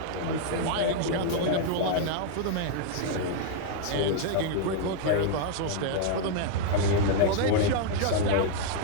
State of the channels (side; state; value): both; different; correlation 0.00